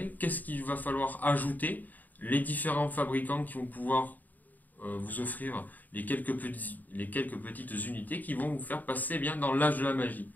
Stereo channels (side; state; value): right; late; 0.083 ms